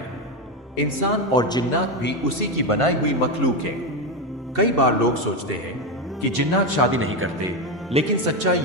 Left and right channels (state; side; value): normal; both; correlation 0.12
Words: इंसान और जिन्नात भी उसी की बनाई हुई मखलूक है। कई बार लोग सोचते हैं कि जिन्नात शादी नहीं करते, लेकिन सच्चाई